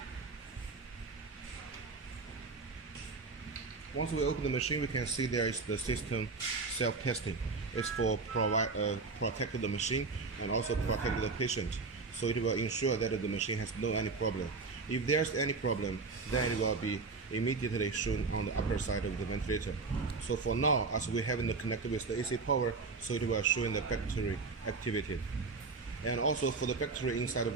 Once we open the machine, we can see there is the system self-testing. It's for protect the machine and also protect the patient. So it will ensure that the machine has no any problem. If there's any problem, then it will be immediately shown on the upper side of the ventilator. So for now, as we haven't connected with the AC power, so it will show in the battery activity. And also for the battery inside the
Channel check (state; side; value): quieter; left; 4.2 dB